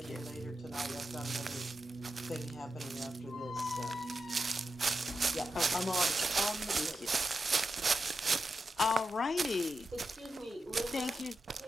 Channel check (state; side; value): normal; both; correlation 0.88